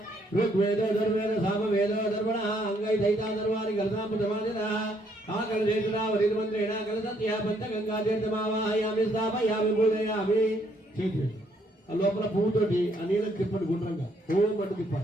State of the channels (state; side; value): normal; both; correlation 0.69